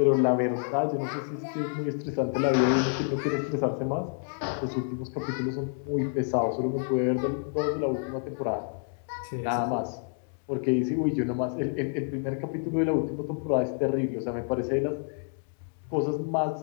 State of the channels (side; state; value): right; silent; 59 dB below the other